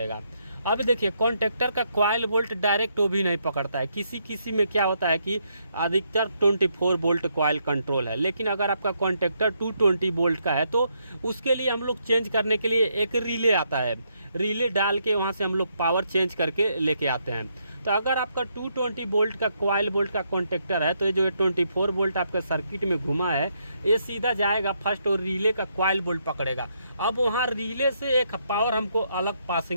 अब देखिए कॉन्टेक्टर का कॉइल बोल्ट डायरेक्ट वो भी नहीं पकड़ता है, किसी में क्या होता है कि अधिकतर 24 वोल्ट कॉइल कंट्रोल है। लेकिन अगर आपका कॉन्टेक्टर 220 वोल्ट का है तो उसके लिए हम लोग चेंज करने के लिए एक रिले आता है, रिले डाल के वहाँ से हम लोग पावर चेंज करके लेके आते हैं। तो अगर आपका 220 वोल्ट का कॉइल बोल्ट का कॉन्टेक्टर है तो ये जो 24 वोल्ट आपका सर्किट में घुमा है ये सीधा जाएगा फर्स्ट और रिले का कॉइल बोल्ट पकड़ेगा। अब वहाँ रिले से एक पावर हमको अलग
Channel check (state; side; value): inverted; both; correlation -0.76